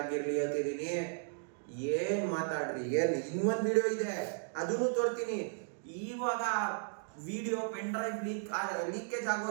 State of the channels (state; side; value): silent; left; digital silence